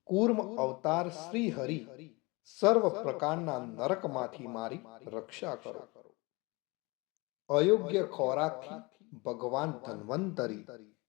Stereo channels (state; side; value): quieter; right; 25.7 dB